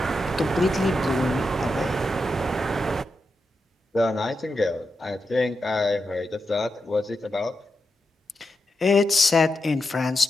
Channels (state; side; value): normal; both; correlation 0.87